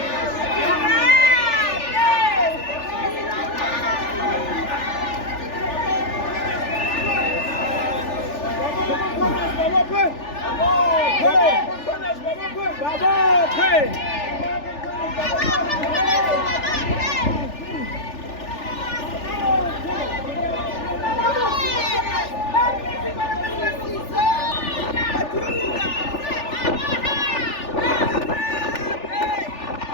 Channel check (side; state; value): right; late; 3.4 ms